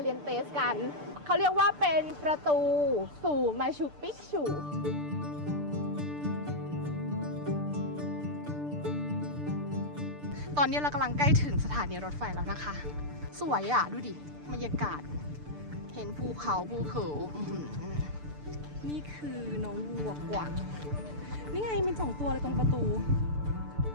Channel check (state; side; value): late; left; 6.8 ms